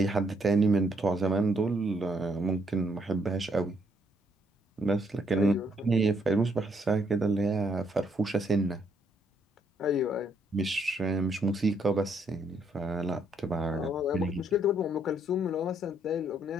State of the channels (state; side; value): normal; both; correlation 0.72